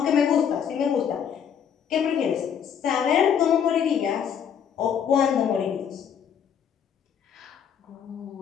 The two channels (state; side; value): quieter; right; 8.0 dB